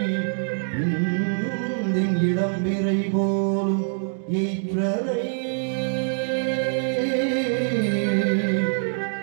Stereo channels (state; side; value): silent; left; digital silence